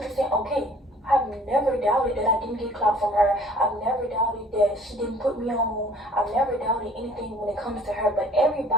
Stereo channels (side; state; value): both; normal; correlation 0.53